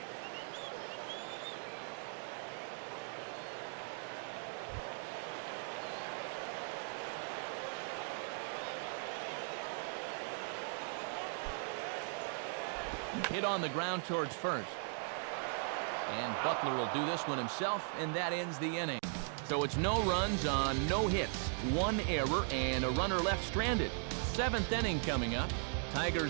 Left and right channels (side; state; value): left; silent; 52 dB below the other